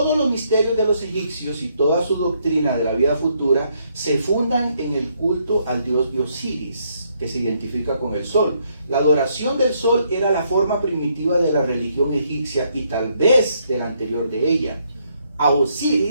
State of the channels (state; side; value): inverted; both; correlation -0.73